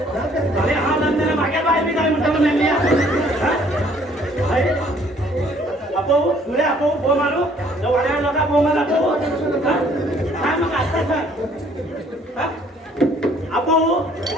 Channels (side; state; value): both; normal; correlation 0.60